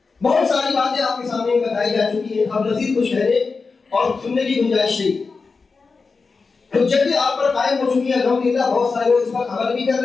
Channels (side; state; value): right; quieter; 4.5 dB